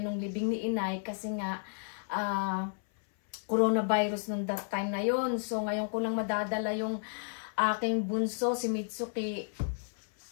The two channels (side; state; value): right; silent; 56 dB below the other